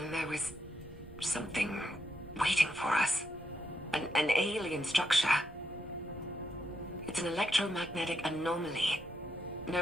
there was something waiting for us. An alien structure. It's an electromagnetic anomaly.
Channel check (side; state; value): right; noise; rumble, 20 dB below the sound